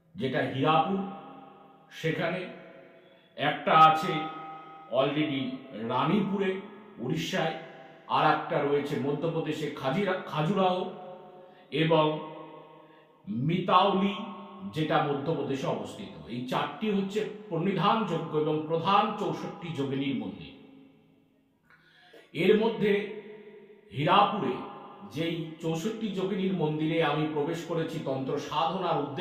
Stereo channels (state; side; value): identical; both; correlation 1.00